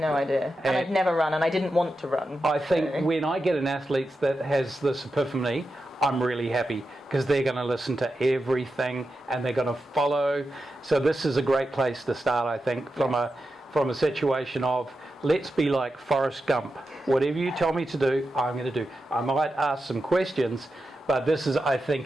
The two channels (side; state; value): both; normal; correlation 0.90